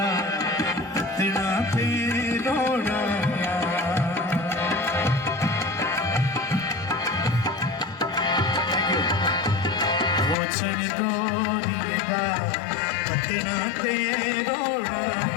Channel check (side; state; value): right; drops out; at 10.4 s